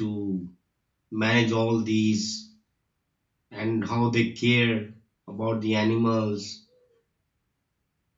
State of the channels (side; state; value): both; identical; correlation 1.00